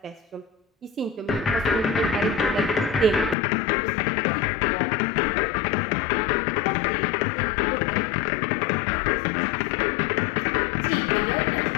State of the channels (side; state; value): right; drops out; at 3.4 s